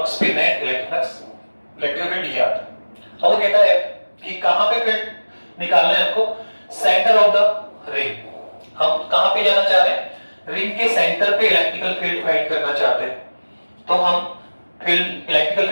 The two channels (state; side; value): inverted; both; correlation -1.00